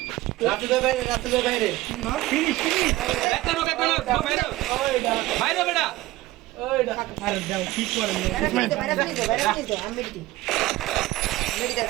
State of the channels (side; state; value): left; quieter; 17.9 dB